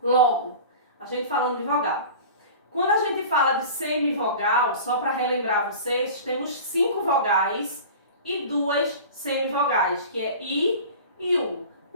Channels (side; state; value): both; inverted; correlation -0.37